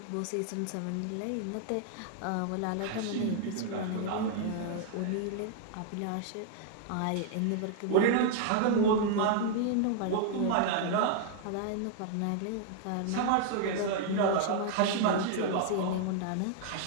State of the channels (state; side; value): different; both; correlation 0.00